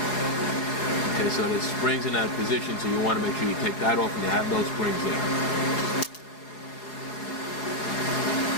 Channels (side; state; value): right; late; 4.8 ms